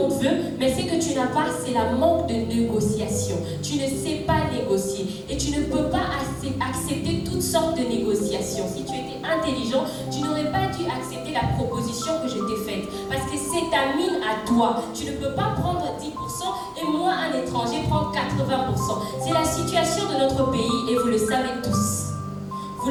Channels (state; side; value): identical; both; correlation 1.00